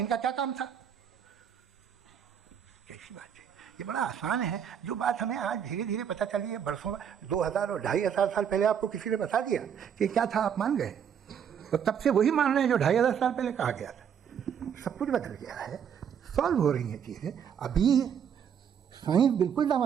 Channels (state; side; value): quieter; left; 8.2 dB